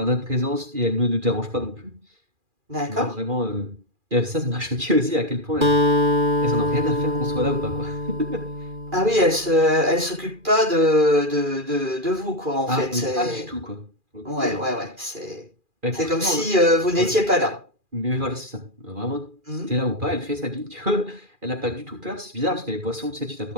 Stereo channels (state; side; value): late; left; 2.4 ms